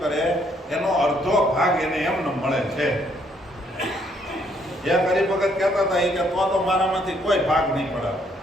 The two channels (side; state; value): both; normal; correlation 0.69